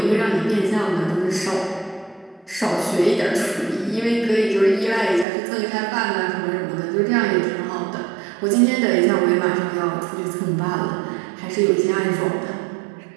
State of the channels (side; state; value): left; drops out; at 5.2 s